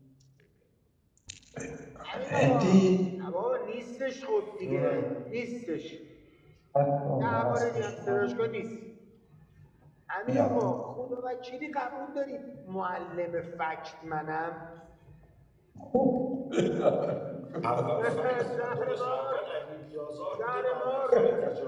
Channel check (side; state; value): both; identical; correlation 1.00